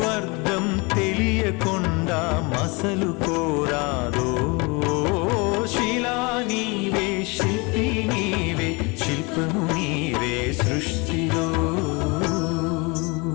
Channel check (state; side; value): quieter; right; 28.1 dB